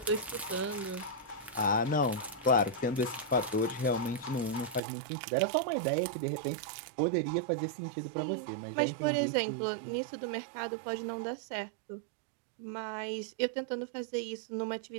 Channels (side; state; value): left; drops out; at 4.8 s